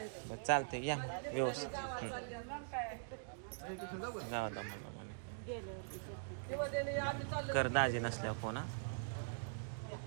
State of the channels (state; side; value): silent; left; digital silence